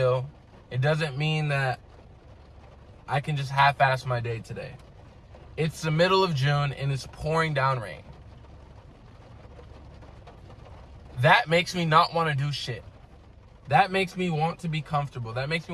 It doesn't mean that I can just half-ass my day today. It's the middle of June and it's pouring down rain. That makes me not want to do shit. That makes me want to be comfortable. That makes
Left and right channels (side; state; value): both; identical; correlation 1.00